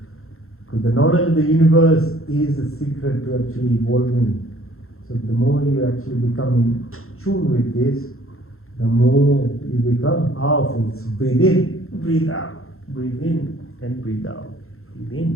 Because the knowledge of the universe is the secret to actually evolving. So the more you actually become in tune with this, the more you become powerful. So breathe in, breathe out, breathe in and breathe out. Breathe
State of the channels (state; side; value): late; right; 0.62 ms